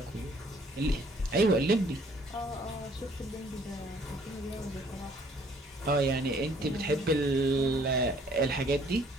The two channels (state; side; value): normal; both; correlation 0.60